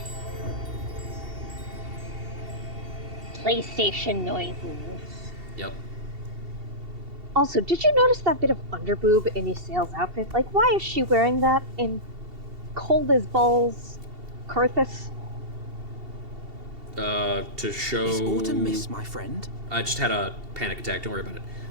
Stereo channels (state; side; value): late; left; 2.7 ms